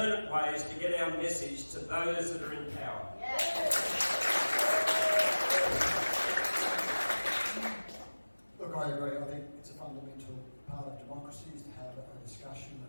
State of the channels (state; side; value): inverted; both; correlation -1.00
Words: ways to get our message to those that are in power. Look, I agree. I think it's a fundamental part of democracy is to have a discussion